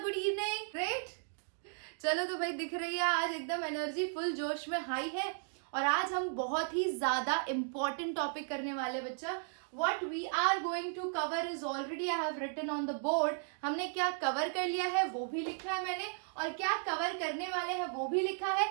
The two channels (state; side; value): silent; left; digital silence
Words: good evening. Great. चलो तो भाई दिख रही है आज एकदम एनर्जी फुल जोश में हाई है और आज हम बहुत ही ज्यादा इम्पोर्टेंट टॉपिक करने वाले बच्चा. What we are going to cover is already I have written on the board. हमने क्या कवर कर लिया है वो भी लिखा है मैंने और क्या कवर करने वाले हैं वो भी लिखा है.